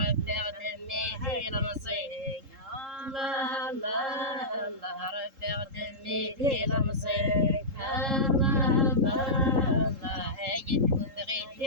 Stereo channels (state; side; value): late; left; 3.7 ms